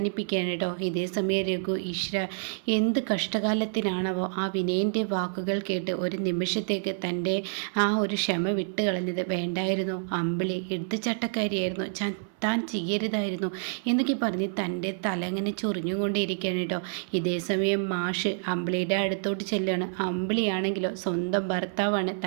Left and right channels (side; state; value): left; silent; 59 dB below the other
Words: കേട്ടോ. ഇതേ സമയം രഘു ഈശ്വര എന്ത് കഷ്ടകാലത്തിനാണവോ ആ വിനയൻ്റെ വാക്കുകൾ കേട്ട് ഒരു നിമിഷത്തേക്ക് തൻ്റെ ആ ഒരു ക്ഷമ വിട്ട് കളഞ്ഞത്. വേണ്ടായിരുന്നു, അമ്പിളി എടുത്തുചട്ടക്കാരിയായിരുന്നു, താൻ ചെയ്യരുതായിരുന്നു എന്നൊക്കെ പറഞ്ഞ് തൻ്റെ തല അങ്ങനെ ചൊറിഞ്ഞുകൊണ്ടേയിരിക്കുകയാണ് കേട്ടോ. ഇതേ സമയം മാഷ് അമ്പിളിയുടെ അടുത്തോട്ട് ചെല്ലുകയാണ്. അമ്പിളിയാണെങ്കിലോ സ്വന്തം ഭർത്താവാണ്,